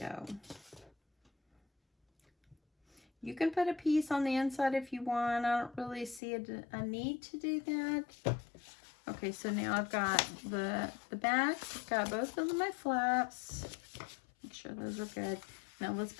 You can put a piece on the inside if you want. I don't really see a need to do that. Okay, so now I've got the back. I've got both of my flaps. Make sure those are good. Now let's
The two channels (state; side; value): drops out; right; at 6.2 s